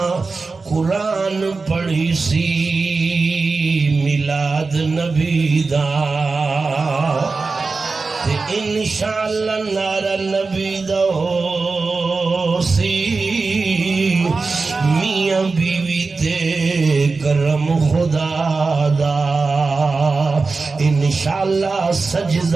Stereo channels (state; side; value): quieter; left; 4.1 dB